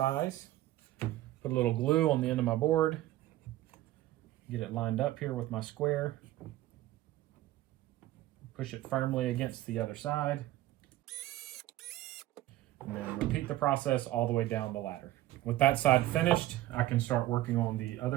Put a little glue on the end of my board. Get it lined up here with my square. Push it firmly against the other side. And then repeat the process all the way down the ladder. With that side finished, I can start working on the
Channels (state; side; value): quieter; left; 15.2 dB